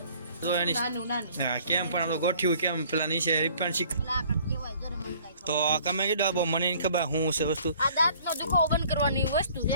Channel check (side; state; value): both; inverted; correlation -0.55